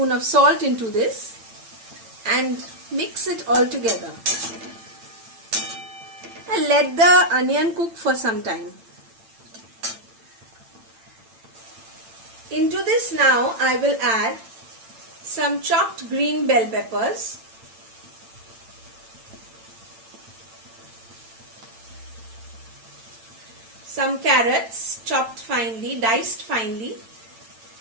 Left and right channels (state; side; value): late; left; 8.9 ms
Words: of salt into this and mix it all together. And let the onion cook for some time. Into this now I will add some chopped green bell peppers, some carrots chopped finely, diced finely,